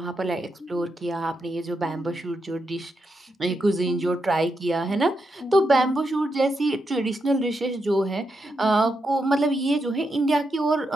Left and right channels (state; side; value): normal; both; correlation 0.84